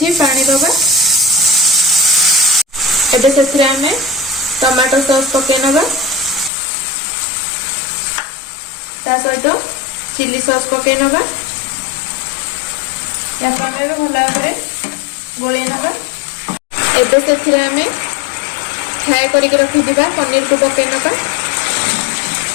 पानी दबा। एबे से आम टमाटो सॉस पकई नवा, ता सहित चिली सॉस पकई नवा। या भल भाव में गोले नवा। एबे से आम फ्राए करके रखिथिबा पनीर को पकई नवा।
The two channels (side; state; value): right; drops out; at 6.5 s